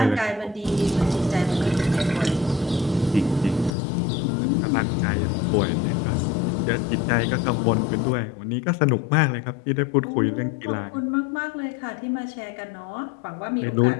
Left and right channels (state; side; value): drops out; right; at 3.8 s